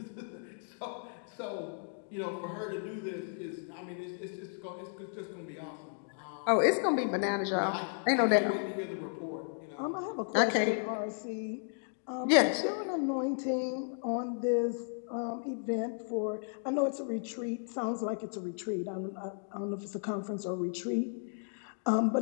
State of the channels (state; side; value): silent; right; digital silence